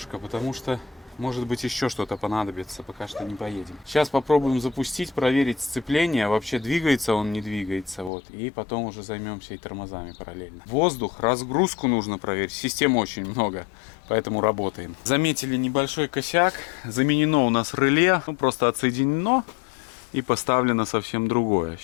потому что может быть еще что-то понадобится, пока что не поедем. Сейчас попробуем запустить, проверить сцепление, вообще двигается он, не двигается, вот, и потом уже займемся и тормозами параллельно. Воздух, разгрузку нужно проверить, систем очень много, поэтому работаем. Заметили небольшой косяк, заменено у нас реле, ну просто отсоединено и поставлено совсем другое.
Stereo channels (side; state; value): right; drops out; at 8.1 s